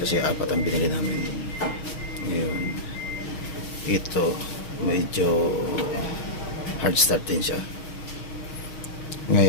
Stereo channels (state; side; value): late; right; 6.3 ms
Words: 4 ang binili namin. Ngayon ito medyo hard start din siya.